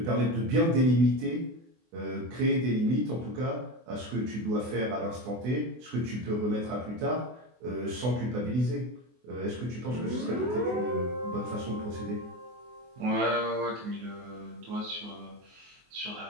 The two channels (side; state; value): left; late; 24 ms